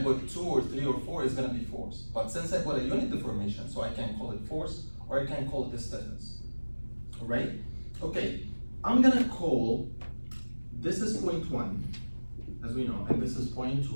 2 or 3 or 4, it's gonna be force. But since I put a unit deformation, so I can call it force, or I can call it a stiffness. Alright? Okay, I'm gonna call, this is point 1, as we know, and this is point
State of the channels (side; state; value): both; inverted; correlation -1.00